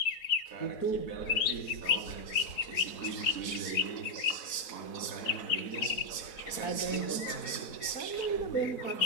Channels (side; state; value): right; late; 4.1 ms